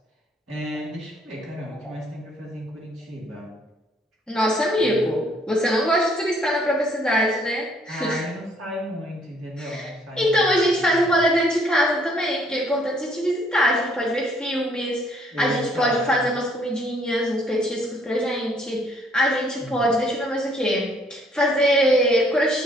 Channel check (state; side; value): normal; both; correlation 0.65